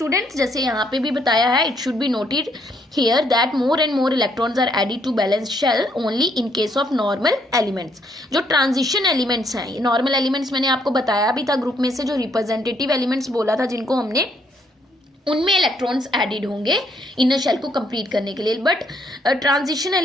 जैसे यहाँ पे भी बताया है, it should be noted here that more and more electrons are added to balance shell only in case of normal elements. जो ट्रांजिशन एलिमेंट्स हैं, ये नॉर्मल एलिमेंट्स मैंने आपको बताया भी था ग्रुप में से, जो रिप्रेजेंटेटिव एलिमेंट्स बोला था जिनको हमने, उनमें इलेक्ट्रॉन्स एडेड होंगे इनर शेल को कंप्लीट करने के लिए। बट ट्रांजिशन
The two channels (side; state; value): both; normal; correlation 0.71